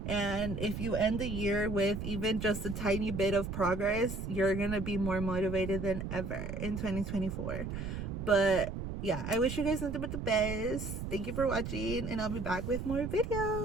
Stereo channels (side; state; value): right; noise; rumble, 5 dB below the sound